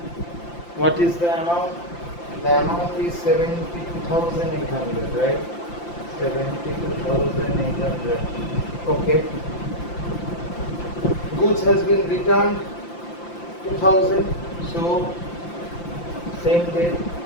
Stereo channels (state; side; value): late; right; 5.8 ms